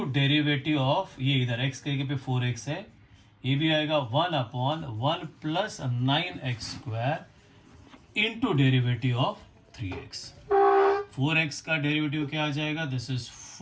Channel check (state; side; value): identical; both; correlation 1.00